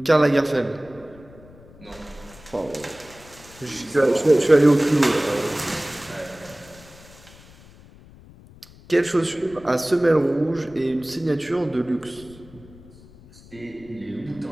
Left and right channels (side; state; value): left; noise; rumble, 22 dB below the sound